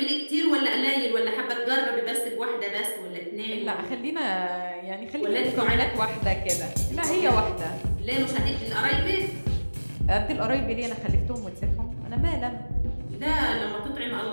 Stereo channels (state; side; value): inverted; both; correlation -1.00